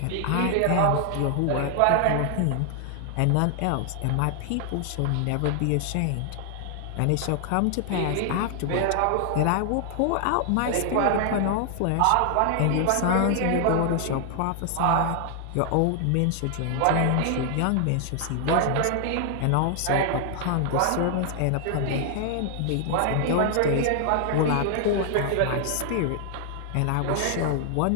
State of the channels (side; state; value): both; different; correlation 0.00